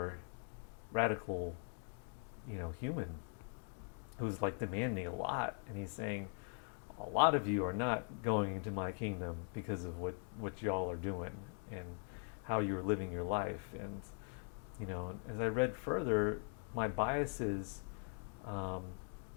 radical, human who's like demanding a lot, and he's saying, a lot of you are not going into my kingdom because of what y'all are doing and how you're living your life." And as I read further, my biases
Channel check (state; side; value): silent; right; 50 dB below the other